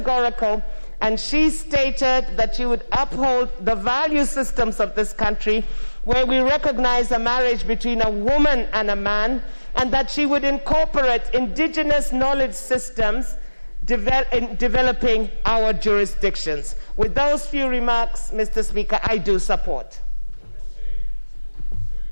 and she stated that she would uphold the value systems of this country, where we recognize a marriage between a woman and a man, and that she would incorporate indigenous knowledge systems in developing our jurisdictions. With those few remarks, Mr. Speaker, I do support.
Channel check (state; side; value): inverted; both; correlation -1.00